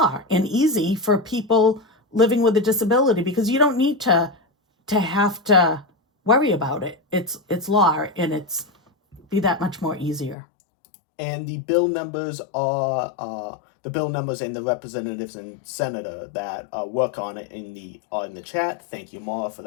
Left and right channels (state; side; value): drops out; right; at 10.4 s